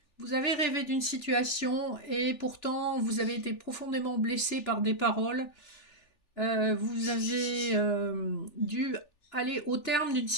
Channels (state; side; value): late; right; 3.4 ms